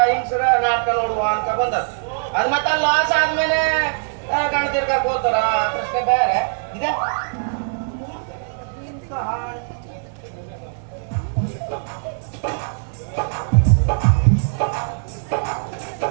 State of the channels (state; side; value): silent; left; 59 dB below the other